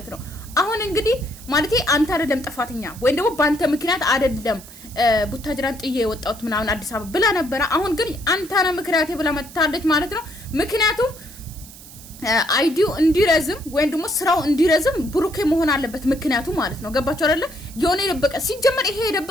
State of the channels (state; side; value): noise; right; hiss, 18 dB below the sound